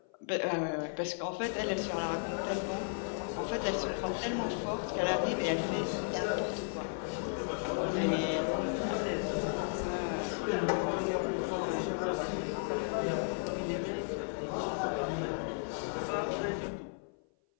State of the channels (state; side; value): silent; right; 55 dB below the other